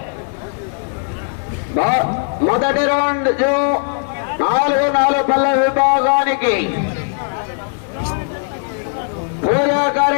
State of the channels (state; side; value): silent; right; 58 dB below the other